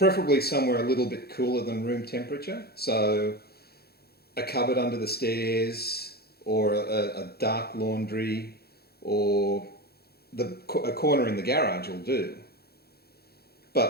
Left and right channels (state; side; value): late; right; 0.46 ms